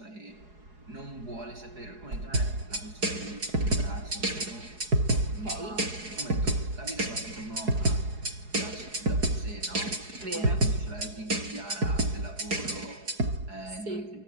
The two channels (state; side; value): late; left; 4.8 ms